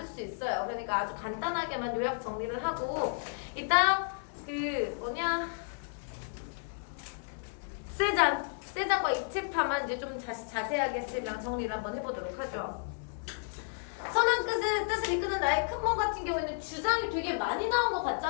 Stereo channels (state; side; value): silent; right; 56 dB below the other